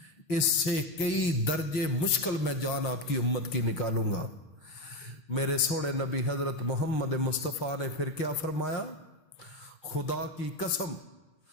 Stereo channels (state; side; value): late; right; 6.3 ms